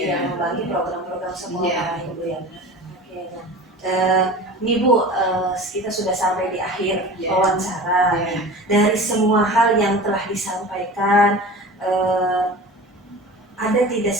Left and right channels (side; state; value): both; normal; correlation 0.36